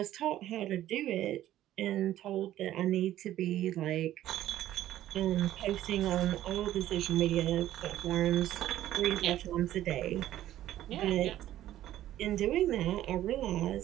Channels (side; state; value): left; quieter; 13.2 dB